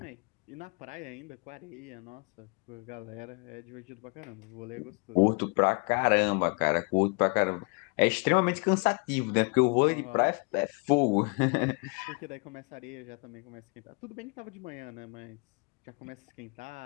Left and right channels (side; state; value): right; quieter; 32.2 dB